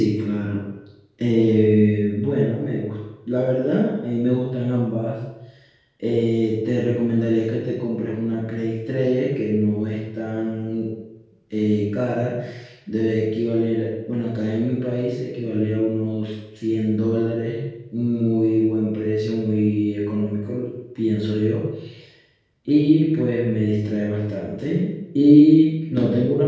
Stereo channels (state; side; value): identical; both; correlation 1.00